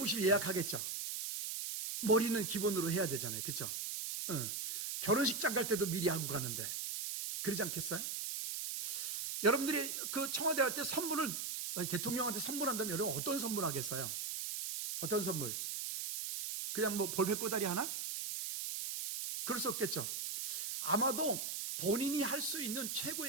예약하겠죠. 머리는 기본으로 해야 되잖아요. 그렇죠? 결혼식장 갈 때도 미리 하고 가는데 그러지 않겠어요? 여러분들이 그 청와대 갈 때 선물을, 대통령한테 선물한다면 여러분 어떤 선물 하겠어요? 어떤 선물? 그냥 뭐 볼펜 꼬다리 하나? 그럴 수 없겠죠. 아마도 본인이 할 수 있는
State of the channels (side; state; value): right; noise; hiss, 3 dB below the sound